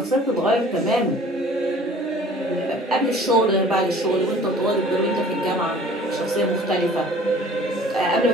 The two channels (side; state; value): both; normal; correlation 0.49